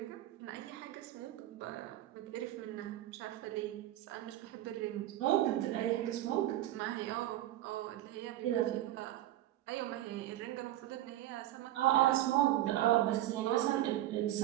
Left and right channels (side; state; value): left; quieter; 14.1 dB